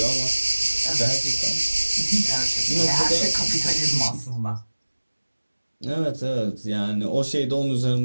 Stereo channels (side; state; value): both; inverted; correlation -1.00